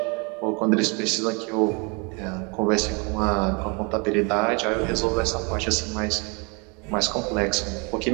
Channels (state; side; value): quieter; left; 31.8 dB